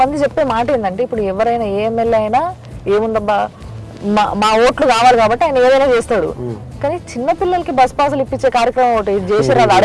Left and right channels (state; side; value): identical; both; correlation 1.00